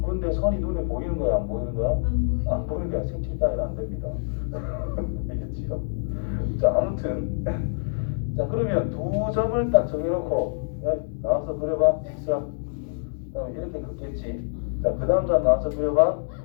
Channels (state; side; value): silent; right; digital silence